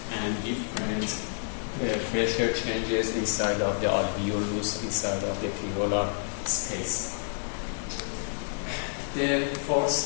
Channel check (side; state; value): right; silent; 58 dB below the other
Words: and different pressure changes inside of the alveolus, inside of the pleural space. The